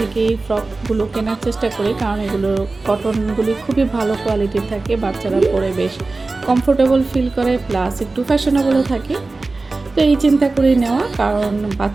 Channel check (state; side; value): quieter; left; 3.5 dB